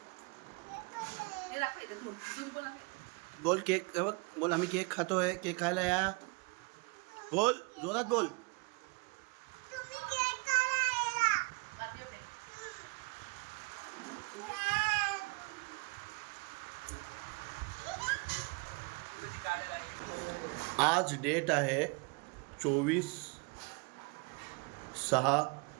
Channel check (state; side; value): quieter; left; 29.3 dB